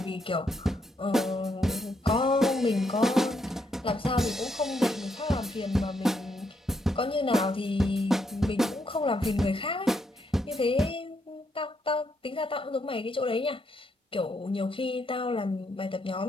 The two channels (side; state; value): both; normal; correlation 0.77